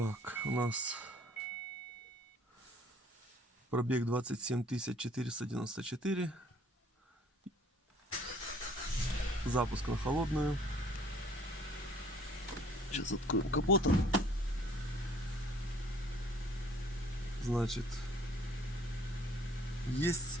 у нас пробег 27 494. Запуск на холодную. Сейчас откроем капот. Значит, есть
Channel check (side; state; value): both; normal; correlation 0.57